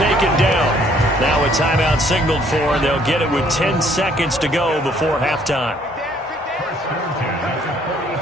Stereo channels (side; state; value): both; normal; correlation 0.63